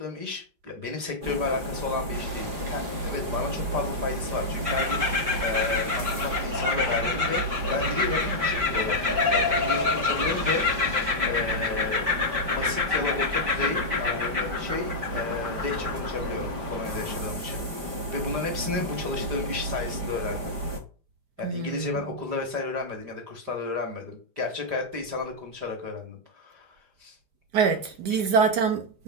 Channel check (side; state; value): left; late; 5.0 ms